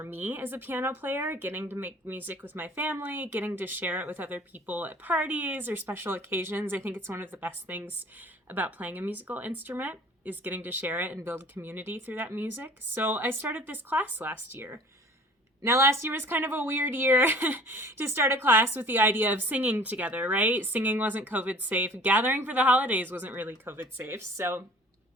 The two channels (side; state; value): both; normal; correlation 0.48